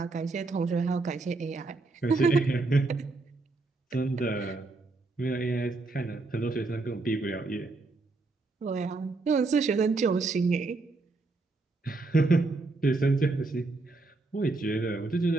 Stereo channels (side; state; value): left; quieter; 3.5 dB